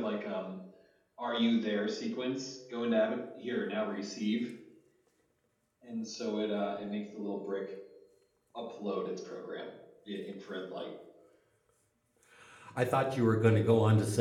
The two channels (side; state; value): both; identical; correlation 1.00